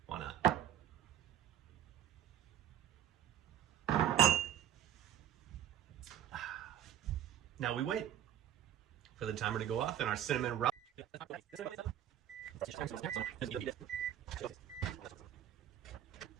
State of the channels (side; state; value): left; quieter; 10.9 dB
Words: Why not? Now we wait for the timer to go off and our cinnamon roll.